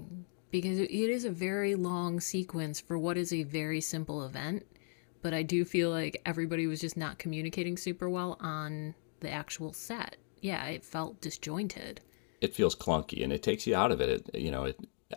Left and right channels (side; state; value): right; silent; 53 dB below the other